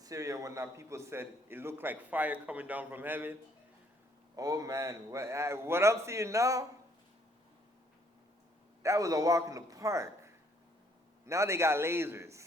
and whatnot, people said it looked like fire coming down from heaven. Oh man, what I'm seeing now, that was a walk in the park. Now they got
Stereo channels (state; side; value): normal; both; correlation 0.66